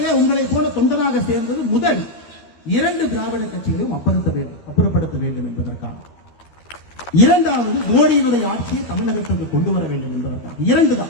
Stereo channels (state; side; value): late; right; 12 ms